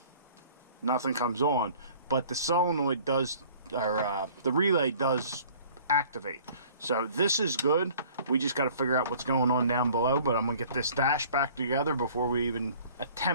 Nothing comes on, but the solenoid does, or the relay does activate. So this is good. We just got to figure out what's going on down below, but I'm gonna get this dash back together before we even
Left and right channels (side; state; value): both; inverted; correlation -0.51